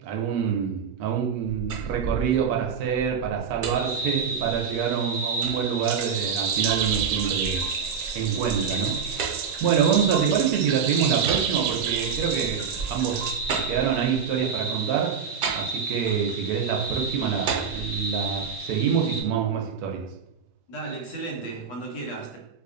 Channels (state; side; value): quieter; left; 6.7 dB